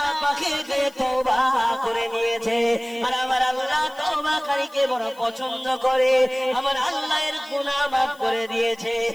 পাকে তওবা করে নিয়েছে। আর আমার আল্লাহ তওবাকারীকে বড় পছন্দ করে, আমার আল্লাহ এর গুনাহ মাফ করে দিয়েছে।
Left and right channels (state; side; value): noise; left; hiss, 25 dB below the sound